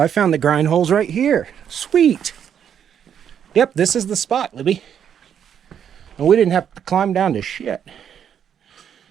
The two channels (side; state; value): left; quieter; 8.7 dB